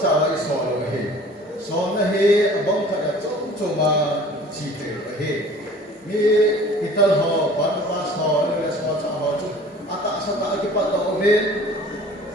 cara isol he, sol he bom cara cuma cipta he. Ni kita ho, pas ho, ni semua cara tu. Atak setak kita tahu he,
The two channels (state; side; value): normal; both; correlation 0.47